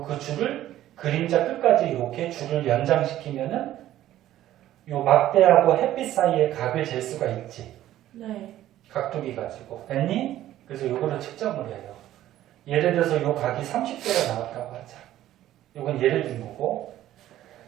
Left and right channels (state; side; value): quieter; left; 13.4 dB